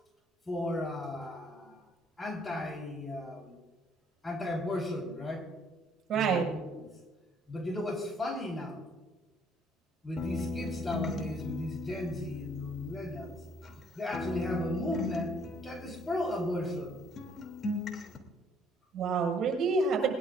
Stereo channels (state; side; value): normal; both; correlation 0.63